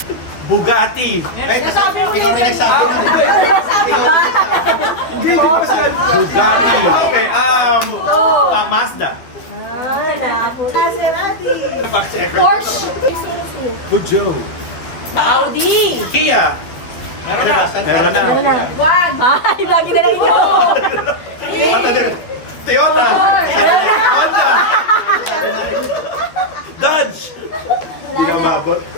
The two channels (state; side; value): late; right; 12 ms